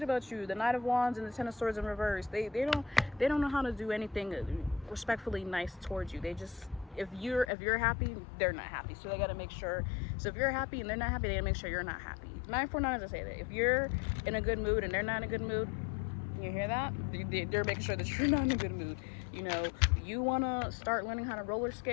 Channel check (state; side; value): drops out; right; at 7.5 s